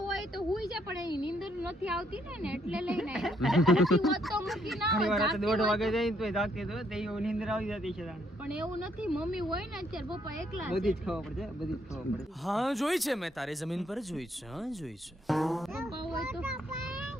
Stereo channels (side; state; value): both; normal; correlation 0.72